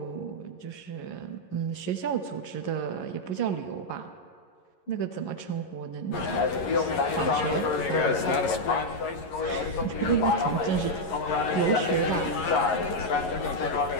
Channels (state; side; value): late; right; 11 ms